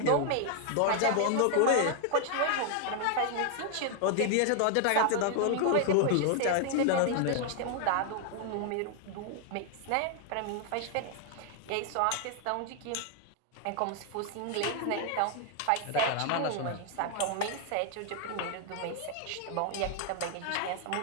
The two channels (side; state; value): both; different; correlation 0.00